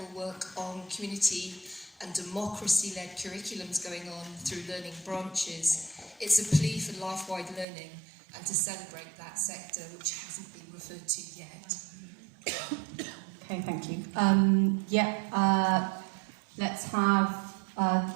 work on community and democracy-led curriculums going on through learning branches. It's a plea for life-wide learning and to celebrate that sector, which hasn't been referred to yet. Okay, thank you. Let's have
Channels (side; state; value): left; drops out; at 7.7 s